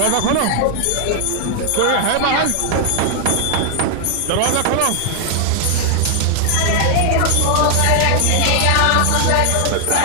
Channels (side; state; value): both; different; correlation 0.00